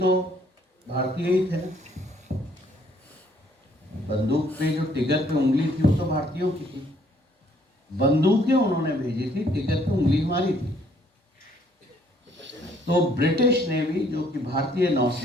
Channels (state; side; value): normal; both; correlation 0.65